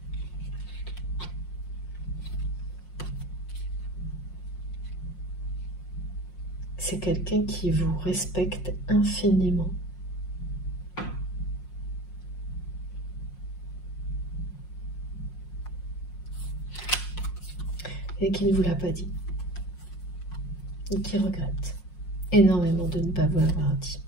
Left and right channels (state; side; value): late; right; 5.6 ms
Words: C'est quelqu'un qui vous respecte infiniment. Et qui ne vous l'a pas dit. Et qui regrette énormément de ne pas vous l'avoir dit.